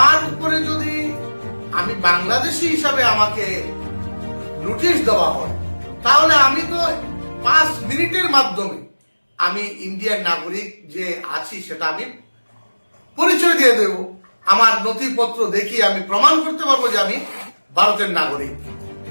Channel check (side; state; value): both; inverted; correlation -1.00